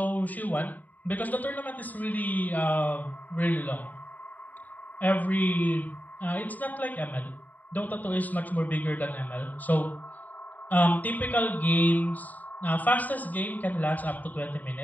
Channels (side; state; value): right; late; 0.081 ms